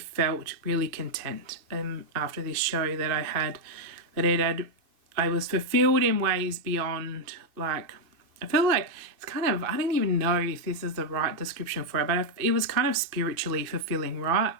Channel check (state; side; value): late; left; 2.5 ms